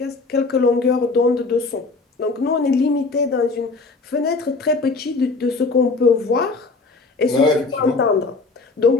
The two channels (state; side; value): quieter; right; 3.8 dB